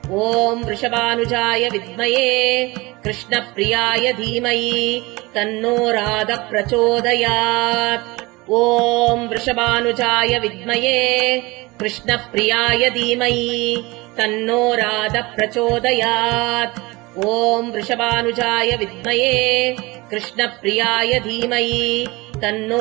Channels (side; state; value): left; quieter; 23.0 dB